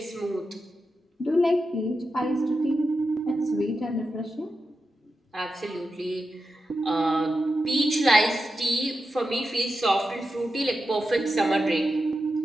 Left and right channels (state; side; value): normal; both; correlation 0.89